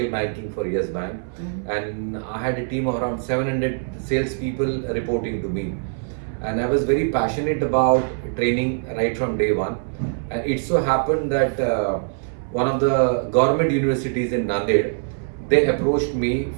banking for Yes Bank, and I had a team of around 700 salespeople reporting to me. And I was very passionate about training right from day one. And it so happened that one of the government universities in Nanded, they approached me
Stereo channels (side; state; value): left; silent; 64 dB below the other